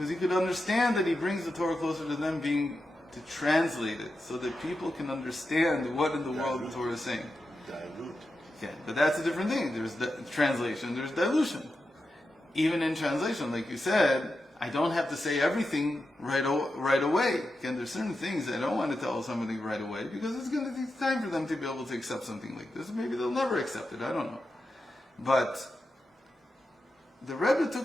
you could understand that he brings the Torah closer to them, being to translate it so that people can understand what in the world the Torah is saying. Dilute. Okay, but that's a different thing. There's translation, there's dilution. Even in translation, like you said, I don't have to say everything right away. Again, there's certain things I don't want to tell somebody right away because it's going to take time for them to be able to accept something like this. Maybe they'll never accept it, I don't know. But the Rebbe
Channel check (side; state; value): both; normal; correlation 0.89